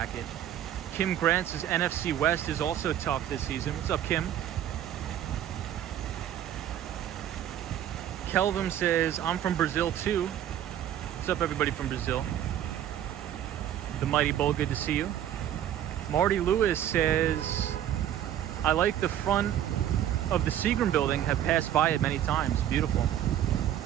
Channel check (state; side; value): quieter; left; 11.0 dB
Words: Kim Grant says NFC West is also tough this season. What's up, Kim? Kelvin says, I'm from Brazil too. What's up, everybody from Brazil? The Mighty Bull, good to see you. Marty Lewis says, I like the front of the Seagram building, have passed by it many times. Beautiful.